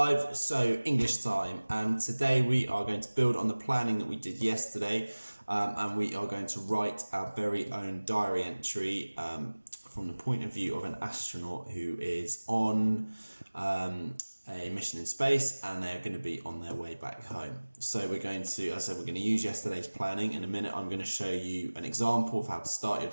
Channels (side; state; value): both; inverted; correlation -1.00